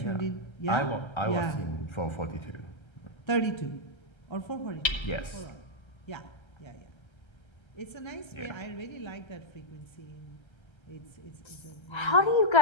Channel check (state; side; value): late; right; 1.3 ms